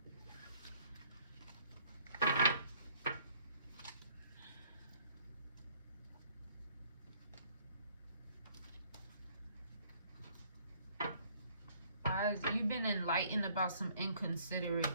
You've been enlightened about some inconsiderate,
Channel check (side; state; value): both; inverted; correlation -0.62